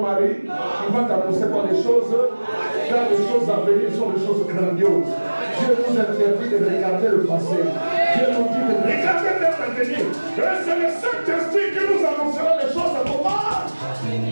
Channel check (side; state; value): both; inverted; correlation -1.00